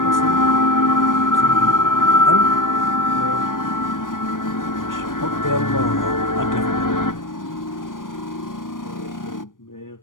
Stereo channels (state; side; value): late; right; 0.89 ms